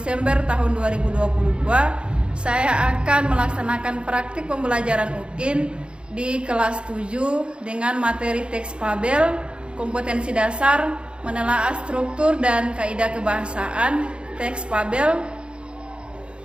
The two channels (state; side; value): late; left; 0.055 ms